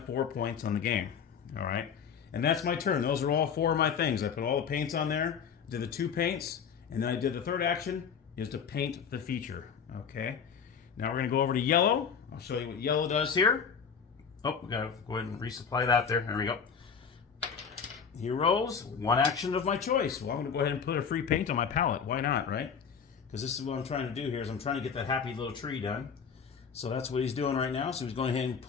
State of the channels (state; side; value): quieter; right; 6.7 dB